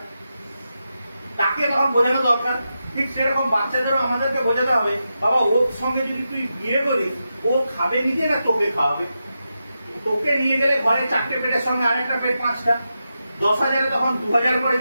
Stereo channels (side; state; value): both; inverted; correlation -0.88